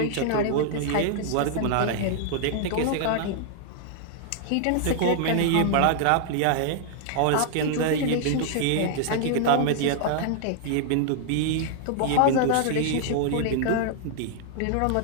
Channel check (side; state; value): both; different; correlation -0.01